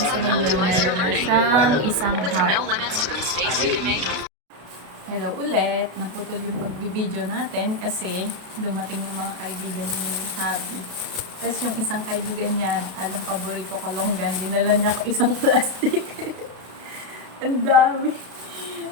optimize your learning. Siyang isang With heart. no limits to the mistakes you can make. Hello ulit. Naputol yung pagbibideo natin kasi dumating yung mga kaibigan ni Habi. Tapos yung isang kaibigan niya, alam paborito ko longgan, dinala niya ako isang plastic. Ang dami.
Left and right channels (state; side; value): late; left; 32 ms